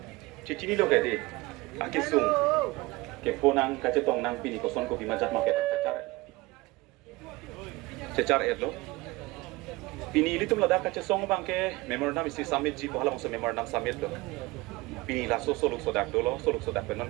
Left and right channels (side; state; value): left; quieter; 21.5 dB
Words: Cici ni lo ke di, akisung, ke ponang kaca tong nang pini koson kopi majat maket cecar lo, pini ini tuh meladak kaca song bang ke memorandum isi summit ji pohala masa memorandum summit lo, pini laso soluk sodak penon